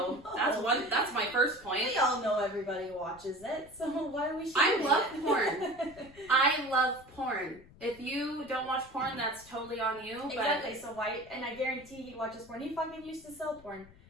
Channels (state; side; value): noise; left; rumble, 23 dB below the sound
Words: that's my first point. We all know everybody watches it, so why are we shaming I love it? porn. I love porn. If you don't watch porn, that's totally on you. But Exactly. So why? And I guarantee he watches porn. He fucking used to sell porn.